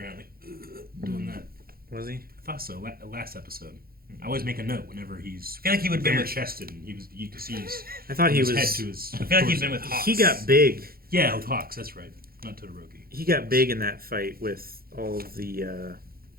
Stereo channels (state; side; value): late; left; 0.43 ms